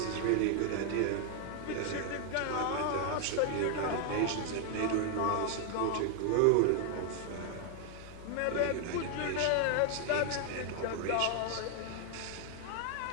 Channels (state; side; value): different; both; correlation 0.00